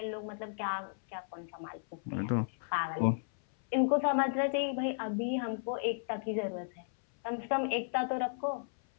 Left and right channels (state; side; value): silent; right; 55 dB below the other